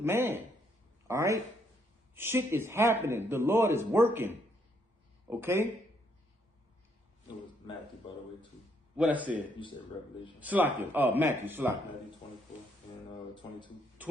man. All right? Shit is happening. The Lord is working. Okay? It was Matthew, by the way, too. What I said? You said Revelation. Salakia. Matthew, Salakia. Matthew 24 and 22.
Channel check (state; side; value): normal; both; correlation 0.72